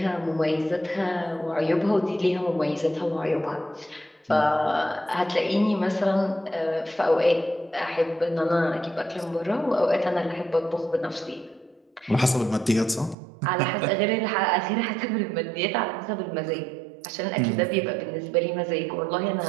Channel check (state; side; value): drops out; left; at 13.2 s